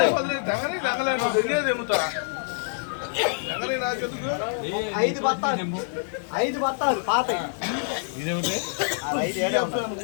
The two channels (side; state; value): right; silent; digital silence